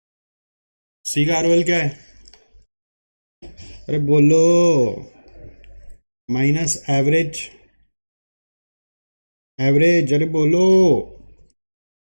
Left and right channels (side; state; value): both; inverted; correlation -1.00